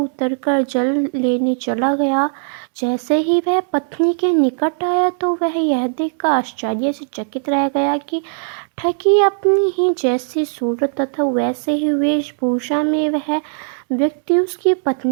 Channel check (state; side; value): silent; left; digital silence